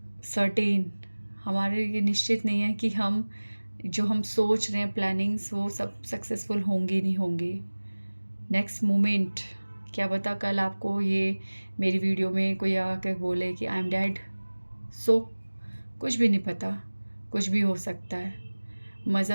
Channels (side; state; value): both; inverted; correlation -1.00